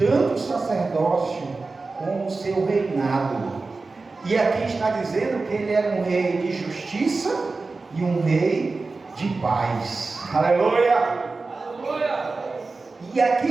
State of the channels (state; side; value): quieter; left; 3.8 dB